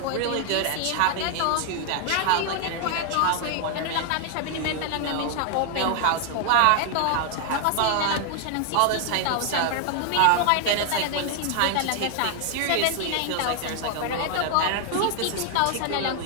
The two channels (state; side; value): different; both; correlation 0.00